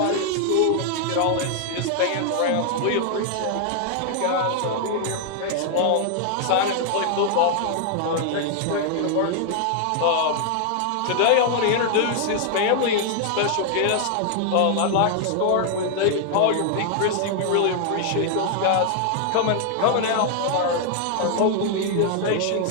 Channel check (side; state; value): both; different; correlation 0.00